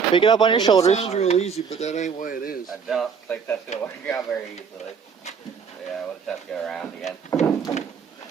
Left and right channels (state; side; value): quieter; left; 6.2 dB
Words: Pick it up on your shoulders. That sounds real easy, but that ain't the way it is. I don't think that's gonna work out very easily. Yeah, we'll just have to go around again.